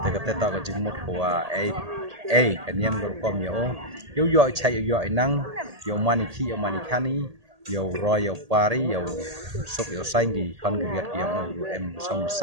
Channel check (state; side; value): late; left; 1.8 ms